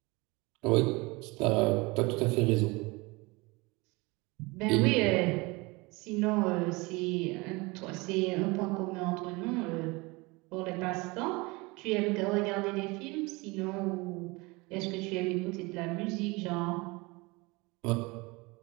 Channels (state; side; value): quieter; left; 24.9 dB